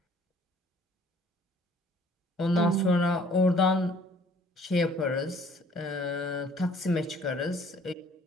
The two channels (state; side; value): normal; both; correlation 0.57